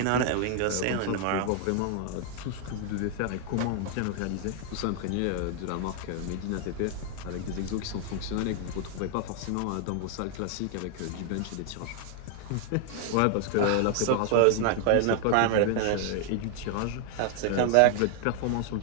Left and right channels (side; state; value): both; different; correlation 0.00